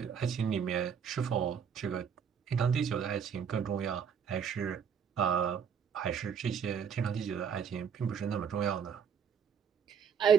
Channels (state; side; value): quieter; left; 7.3 dB